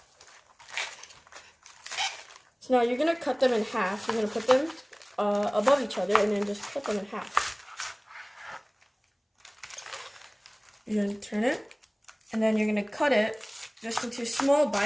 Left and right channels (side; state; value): both; identical; correlation 1.00